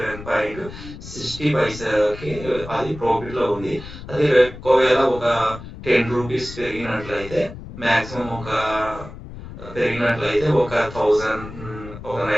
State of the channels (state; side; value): noise; left; rumble, 13 dB below the sound